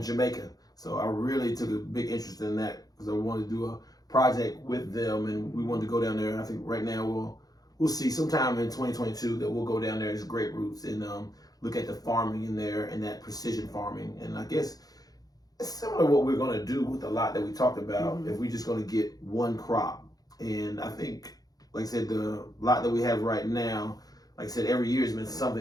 Jamaica. So I really took a big interest in that because I wanted to do a project with them, and we wanted to go down there. And I think right now we'll see sometime in 2022 that we'll go down there as Great Roots and look at the farming in there and that precision farming. And I guess it's similar to what we're going to do with the lot that we talked about if we're just going to get one crop. And I think, like I said, the lot that we have right now, like I said, every year has been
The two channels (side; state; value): right; late; 0.18 ms